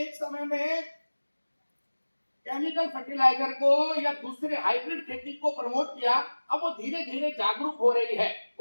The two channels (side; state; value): both; inverted; correlation -1.00